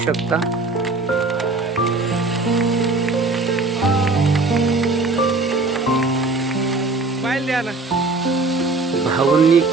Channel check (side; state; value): left; quieter; 3.5 dB